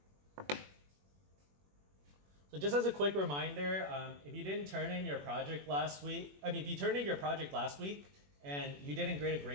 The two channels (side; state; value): left; late; 21 ms